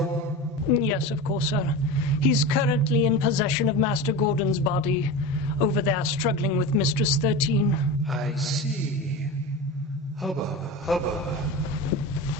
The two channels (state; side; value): normal; both; correlation 0.28